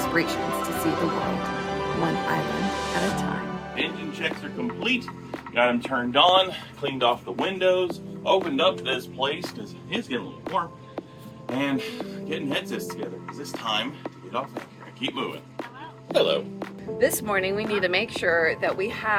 to see the world, one island at a time. Engine checks are complete. Got them turned on, cleaned off the windows, opened up this place because it is getting a little warm, and getting headsets together because it's time to get off anchor and keep moving. Hello. This morning we need to make sure that we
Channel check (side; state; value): both; identical; correlation 1.00